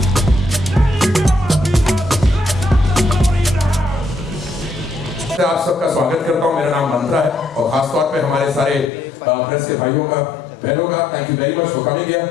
आप सबका स्वागत करता हूं। मेरा नाम मंत्रा है और खासतौर पे हमारे सारे प्रेस के भाइयों का बहनों का thank you very much for coming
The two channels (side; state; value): right; drops out; at 8.9 s